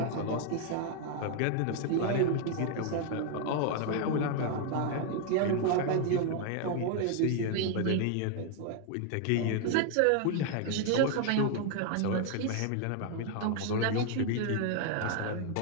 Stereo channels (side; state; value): both; different; correlation 0.00